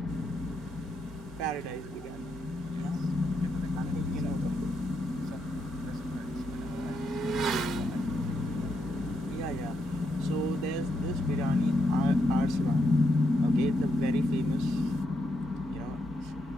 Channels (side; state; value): both; normal; correlation 0.80